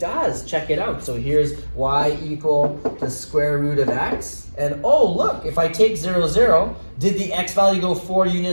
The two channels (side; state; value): both; inverted; correlation -1.00